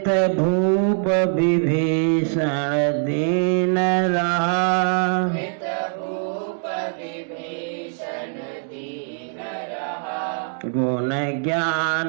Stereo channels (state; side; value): silent; left; 64 dB below the other